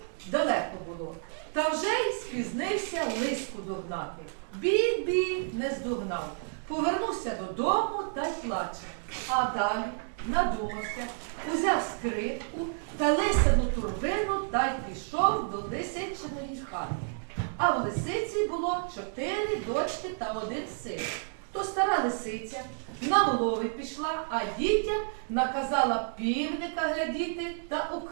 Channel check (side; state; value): left; silent; 58 dB below the other